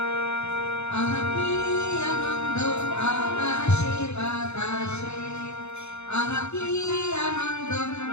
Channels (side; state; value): right; late; 0.81 ms